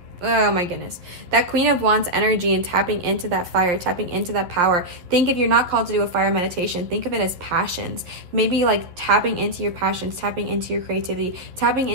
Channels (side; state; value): left; late; 11 ms